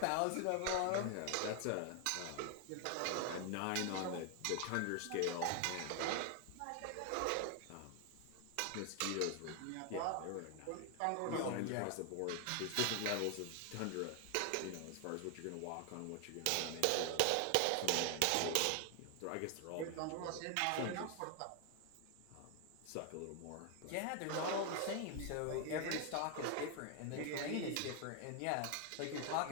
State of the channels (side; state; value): both; different; correlation 0.00